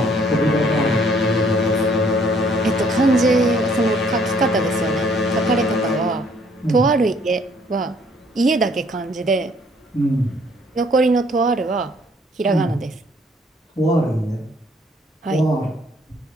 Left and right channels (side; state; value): both; normal; correlation 0.63